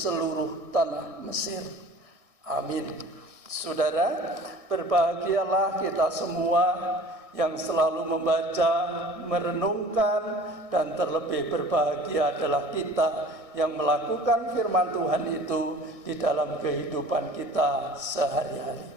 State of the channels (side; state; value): left; late; 1.6 ms